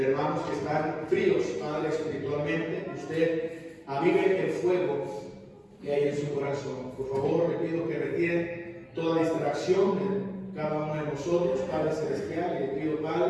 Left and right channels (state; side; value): identical; both; correlation 1.00